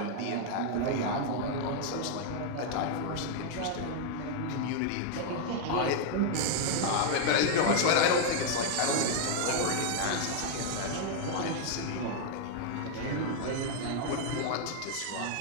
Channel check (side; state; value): both; different; correlation 0.00